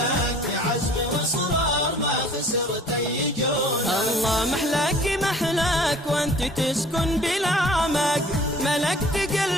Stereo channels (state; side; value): normal; both; correlation 0.51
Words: بعزم واصرار ما خسرت اي جوله. الله محلاك محلاك وانت تسكن بالعمق، ملكت